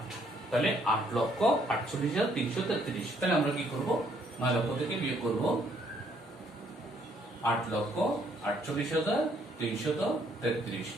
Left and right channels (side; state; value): both; normal; correlation 0.67